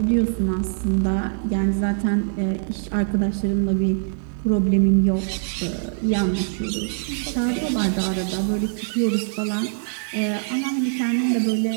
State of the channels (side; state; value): left; silent; digital silence